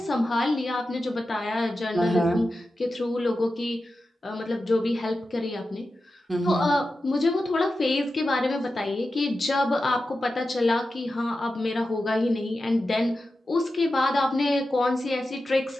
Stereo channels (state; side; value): normal; both; correlation 0.92